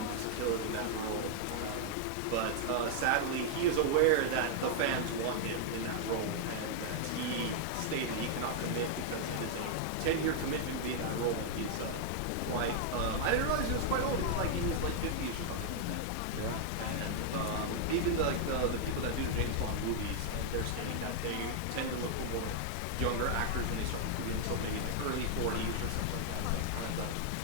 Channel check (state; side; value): different; both; correlation 0.00